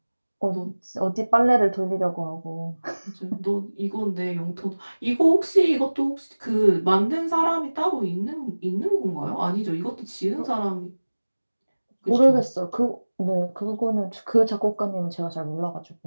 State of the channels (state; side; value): inverted; both; correlation -1.00